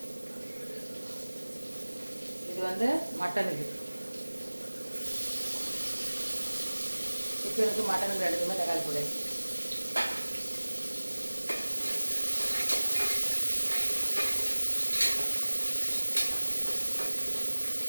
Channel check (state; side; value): inverted; both; correlation -1.00